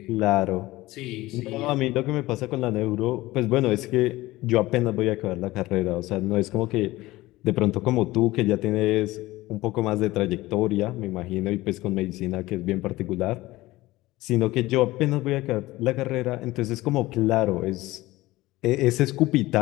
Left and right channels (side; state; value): right; quieter; 18.5 dB